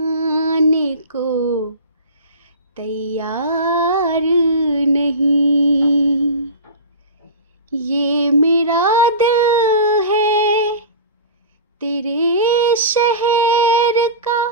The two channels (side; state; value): both; inverted; correlation -0.31